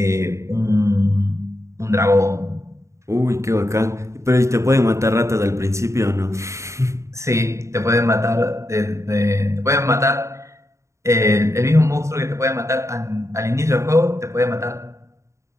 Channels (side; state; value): left; late; 0.14 ms